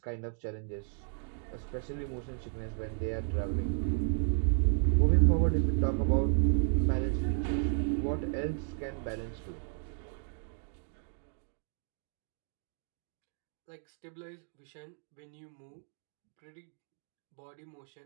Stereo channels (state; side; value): silent; left; 55 dB below the other